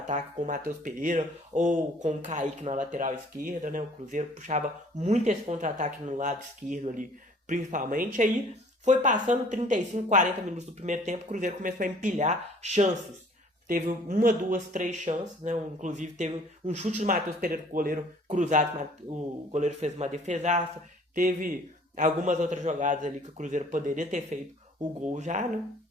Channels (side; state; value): both; normal; correlation 0.55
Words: com o Matheus Pereira ou com o Kaique na lateral esquerda, né? O Cruzeiro puxava muito esse contra-ataque no lado esquerdo ali, principalmente. Aí foi passando 35, 40 minutos do primeiro tempo, o Cruzeiro começou a empilhar chances. Teve uma, duas, três chances, né? Inclusive teve um chute do Matheus Pereira com o goleiro cruzado, o goleiro fez uma defesaça. Teve algumas outras jogadas ali que o Cruzeiro poderia ter feito o gol já, né?